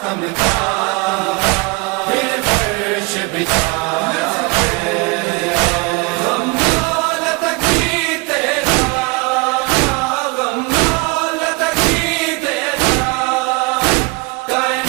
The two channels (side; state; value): left; quieter; 26.9 dB